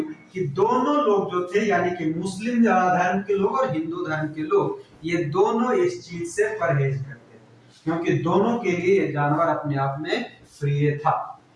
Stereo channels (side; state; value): both; identical; correlation 1.00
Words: कि दोनों लोग जो थे, यानी कि मुस्लिम धर्म के लोग और हिंदू धर्म के लोग, ये दोनों इस चीज से परहेज करते थे, क्योंकि दोनों के लिए ये जानवर अपने आप में प्रिय था।